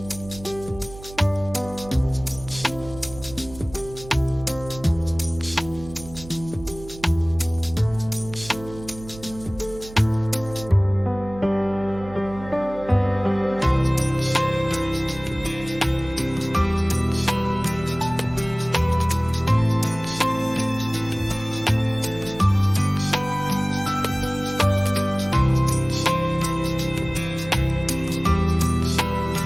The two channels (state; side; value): noise; right; hum, 16 dB below the sound